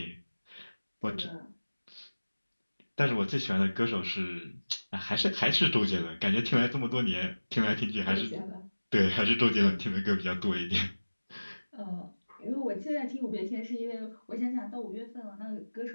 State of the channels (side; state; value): both; inverted; correlation -1.00